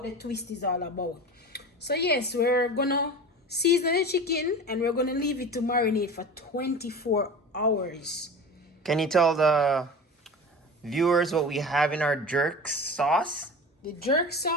the twist is all about. So yes, we're gonna season the chicken and we're gonna leave it to marinate for 24 hours. Can you tell the viewers what we have in our jerk sauce? The jerk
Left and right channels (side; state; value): both; normal; correlation 0.33